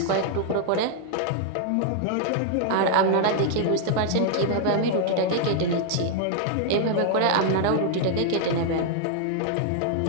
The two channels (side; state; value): both; different; correlation 0.00